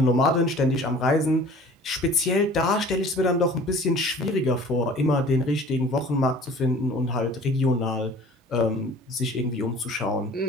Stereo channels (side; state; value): both; normal; correlation 0.47